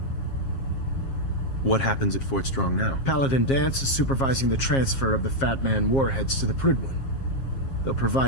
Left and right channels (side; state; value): right; late; 7.4 ms